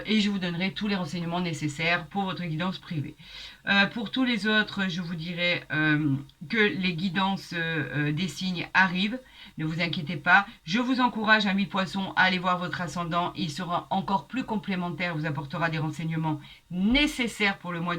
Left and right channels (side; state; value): both; identical; correlation 1.00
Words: Et je vous donnerai tous les renseignements nécessaires pour votre guidance privée. Pour tous les autres, je vous dirai que les guidances des signes arrivent. Ne vous inquiétez pas. Je vous encourage, amis poissons, à aller voir votre ascendant. Il sera encore plus complémentaire, vous apportera des renseignements nécessaires pour le mois